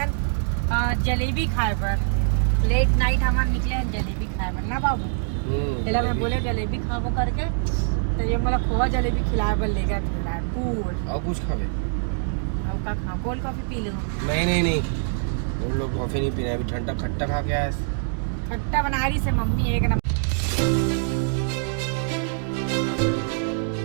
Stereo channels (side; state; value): left; silent; digital silence